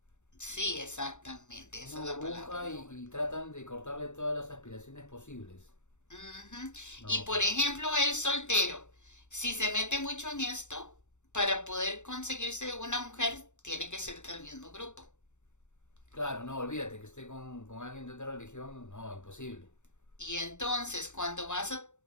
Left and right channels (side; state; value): right; late; 0.84 ms